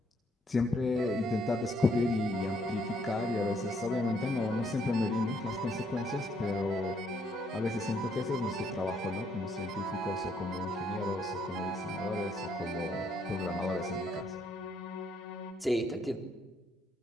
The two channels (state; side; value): normal; both; correlation 0.71